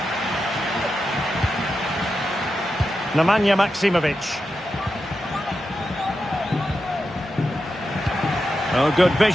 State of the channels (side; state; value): both; normal; correlation 0.89